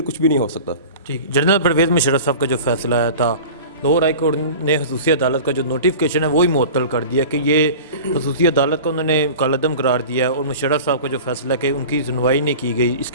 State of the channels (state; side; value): inverted; both; correlation -0.37